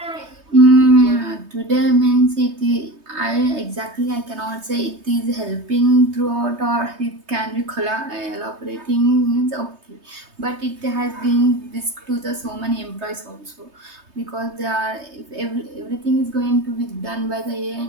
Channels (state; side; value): late; left; 3.2 ms